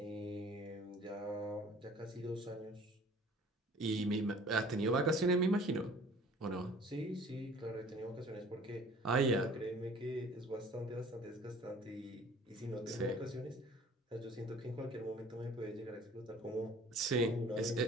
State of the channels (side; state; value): both; normal; correlation 0.50